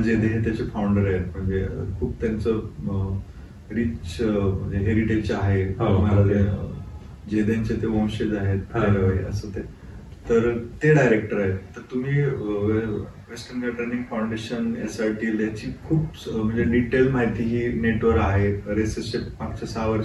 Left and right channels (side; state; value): both; identical; correlation 1.00